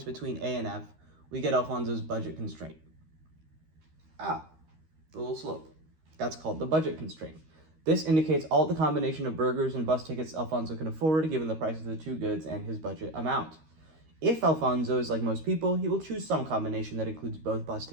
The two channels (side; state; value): left; late; 13 ms